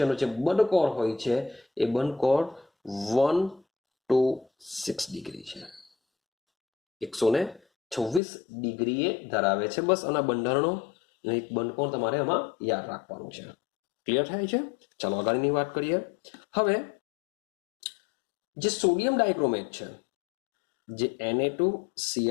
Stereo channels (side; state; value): right; drops out; at 8.2 s